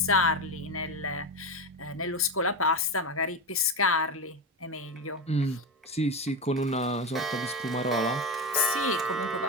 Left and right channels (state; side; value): normal; both; correlation 0.18